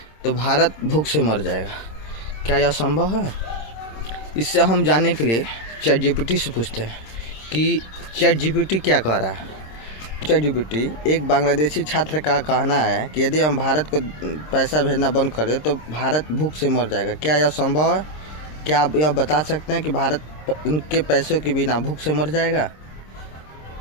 तो भारत भूख से मर जाएगा। क्या यह संभव है? इससे हम जानने के लिए चैट जीपीटी से पूछते हैं कि चैट जीपीटी क्या कह रहा है। चैट जीपीटी एक बांग्लादेशी छात्र का कहना है कि यदि हम भारत को पैसा भेजना बंद कर दें तो भारत भूख से मर जाएगा। क्या यह संभव है? क्या आप यह बता सकते हैं कि भारत उनके पैसों के बिना भूख से मर जाएगा?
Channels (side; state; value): right; late; 26 ms